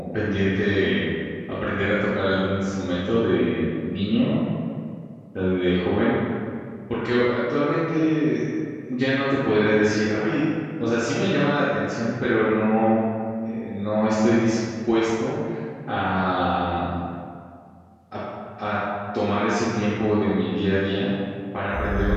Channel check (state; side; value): identical; both; correlation 1.00